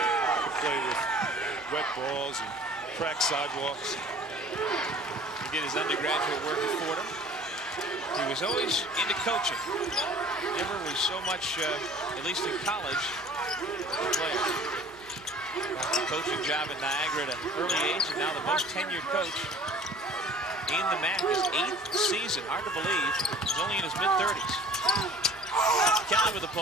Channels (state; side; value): normal; both; correlation 0.48